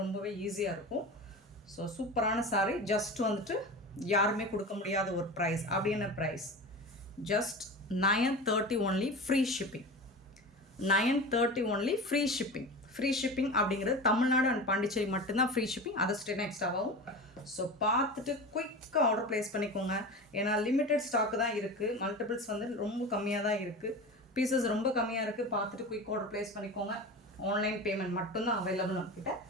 ரொம்பவே ஈஸியாக இருக்கும். ஸோ சூப்பரான சாரி. ஜஸ்ட் வந்துட்டு யாருமே கொடுக்க முடியாத ஒரு ப்ரைஸ். அப்படியான price just 930 only, free shipping. 930 only, free shipping. Free shipping அப்படிங்கிறது தமிழ்நாடு அண்ட் பாண்டிச்சேரி மட்டும்தான் ஃப்ரீ ஷிப்பிங். அதை ஸ்டேட் எக்ஸ்ட்ராவாகும். ஸோ பார்த்துட்டு குயிக்காக ஆர்டர் ப்ளேஸ் பண்ணிக்கோங்க. ஏன்னா லிமிட்டட் ஸ்டாக்கு தான் இருக்குது. மல்டிபிள்ஸ் வந்து ரொம்ப கம்மியாக தான் இருக்குது. பீசஸ் ரொம்ப கம்மியாக இருக்குது. பார்த்துட்டு குயிக் ஆர்டர் ப்ளேஸ் பண்ணிக்கோங்க. ஆன்லைன் பேமெண்ட் மட்டும்தான் அவைலபிள் நம்மக்கிட்ட.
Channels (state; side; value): normal; both; correlation 0.30